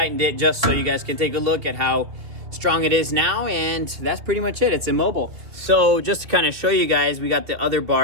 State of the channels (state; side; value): late; left; 2.7 ms